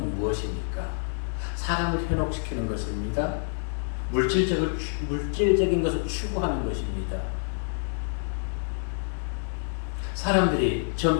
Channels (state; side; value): silent; right; digital silence